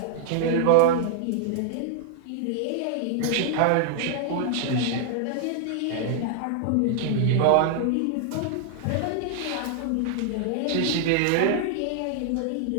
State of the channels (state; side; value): different; both; correlation 0.00